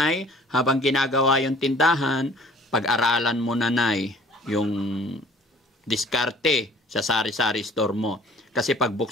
habang ginagawa yung tindahan, pag-aralan mo nanay yung diskarte sa sari-sari store mo. Kasi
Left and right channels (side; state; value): both; normal; correlation 0.52